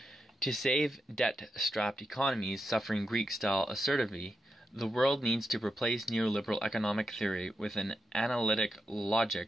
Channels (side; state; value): both; normal; correlation 0.86